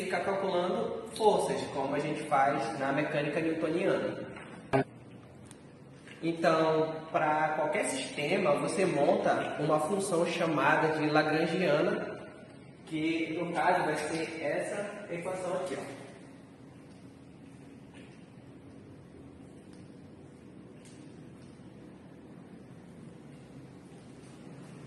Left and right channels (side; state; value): both; identical; correlation 1.00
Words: de ficar calculando forças, como a gente faz na mecânica newtoniana. Então, para qualquer sistema, você monta uma função chamada de lagrangiana, que no caso vai ser essa equação aqui, ó.